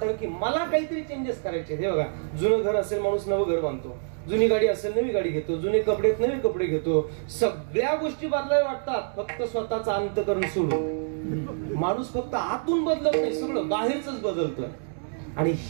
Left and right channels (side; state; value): left; silent; digital silence